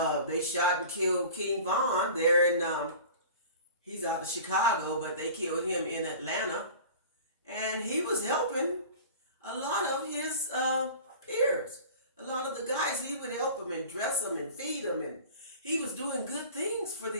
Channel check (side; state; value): both; inverted; correlation -0.40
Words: shot and killed King Von there in he's out of Chicago, but they killed him in Atlanta, and he was helping a lot of his peers. A lot of the guys, he would help them and dress them and feed them, and he was doing good things for